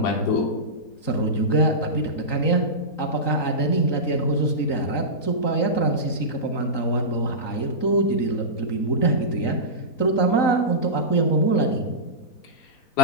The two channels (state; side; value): late; right; 3.9 ms